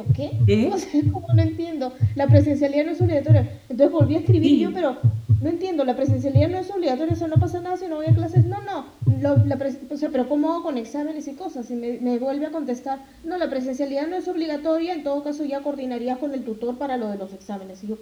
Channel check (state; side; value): identical; both; correlation 1.00